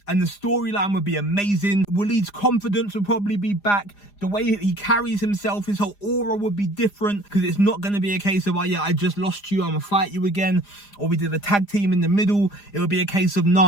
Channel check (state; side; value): late; right; 4.9 ms